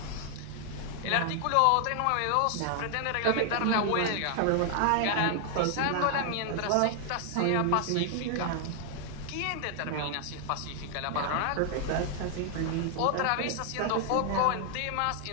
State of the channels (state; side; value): different; both; correlation 0.00